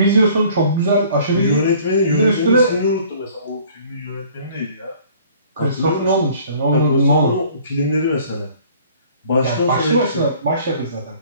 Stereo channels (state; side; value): inverted; both; correlation -0.53